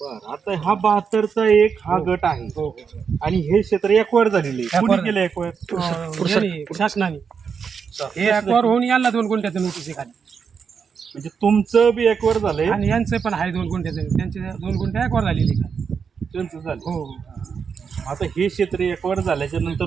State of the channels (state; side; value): quieter; left; 6.3 dB